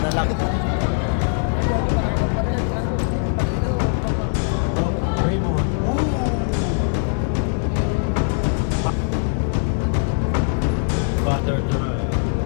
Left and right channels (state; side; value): silent; right; 61 dB below the other